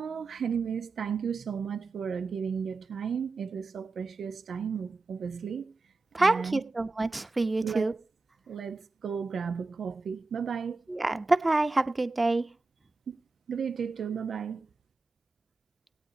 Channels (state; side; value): quieter; left; 3.6 dB